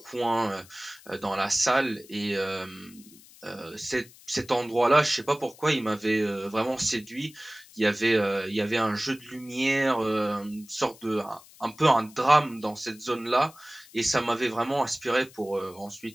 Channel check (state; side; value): noise; left; hiss, 23 dB below the sound